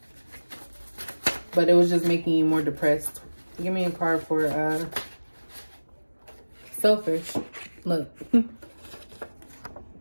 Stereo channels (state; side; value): inverted; both; correlation -1.00